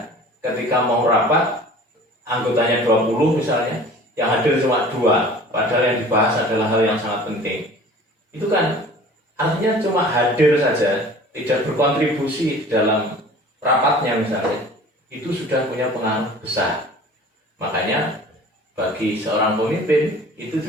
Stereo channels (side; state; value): both; normal; correlation 0.45